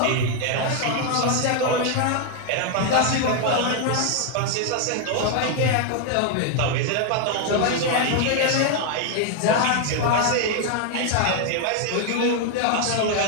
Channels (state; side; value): different; both; correlation 0.00